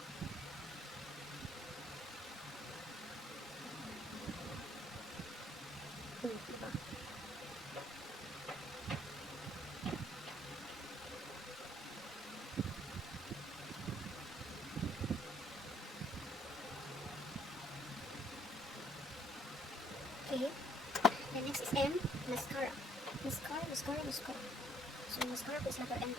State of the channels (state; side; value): normal; both; correlation 0.64